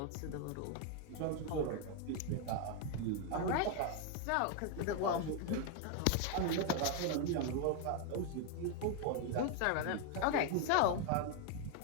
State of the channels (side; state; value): both; different; correlation 0.01